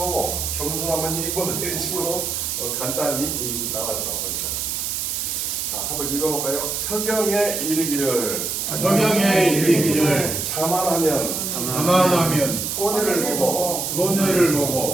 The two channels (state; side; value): noise; right; hiss, 2 dB below the sound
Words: 겸손하면 이익 본다 이런 식으로 간단히 나왔다고 합니다. 자, 한번 읽어볼까요? 서경에 이르기를 성경에 이르기를 자만하면 가만하면 손해를 보고 손해를